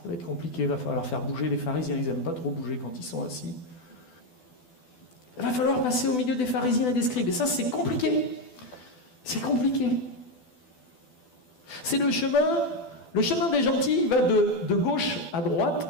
va être compliqué, il va falloir faire bouger les pharisiens, ils n'aiment pas trop bouger quand ils sont assis. Il va falloir passer au milieu des pharisiens et des scribes, et ça c'est compliqué. C'est compliqué. C'est le chemin des gentils, il va de gauche à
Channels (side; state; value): right; late; 12 ms